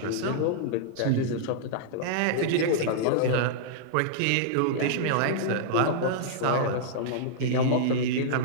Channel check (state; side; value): different; both; correlation -0.02